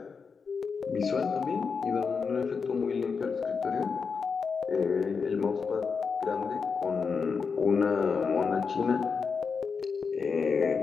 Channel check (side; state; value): right; quieter; 5.4 dB